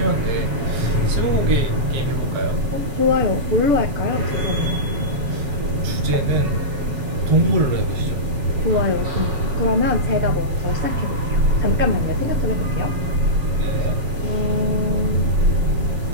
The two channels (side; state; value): left; late; 7.3 ms